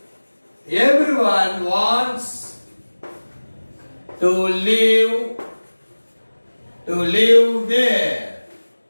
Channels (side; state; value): both; inverted; correlation -1.00